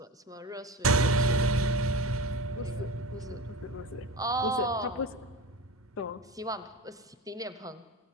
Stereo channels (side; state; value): both; normal; correlation 0.28